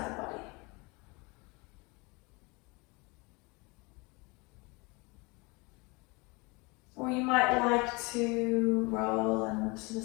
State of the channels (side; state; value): right; quieter; 27.3 dB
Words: the body. Or you might like to roll and to the